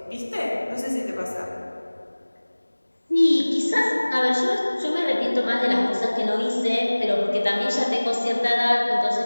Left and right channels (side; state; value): both; inverted; correlation -1.00